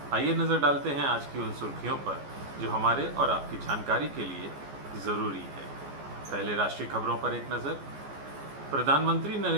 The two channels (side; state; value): left; late; 14 ms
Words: आइए नज़र डालते हैं आज की उन सुर्खियों पर जो हमारे और आपकी जानकारी के लिए ज़रूरी है। पहले राष्ट्रीय खबरों पर एक नज़र। प्रधानमंत्री